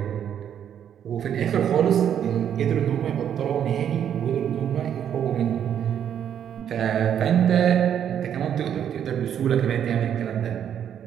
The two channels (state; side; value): quieter; left; 9.2 dB